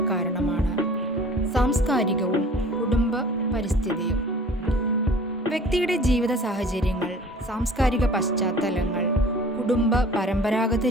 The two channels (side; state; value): both; normal; correlation 0.47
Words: കാരണമാണ് സാംസ്കാരികവും കുടുംബ പരിസ്ഥിതിയും. വ്യക്തിയുടെ ജീവിത സാഹചര്യങ്ങൾ, സാംസ്കാരിക പശ്ചാത്തലങ്ങൾ, കുടുംബ പരമ്പരാഗത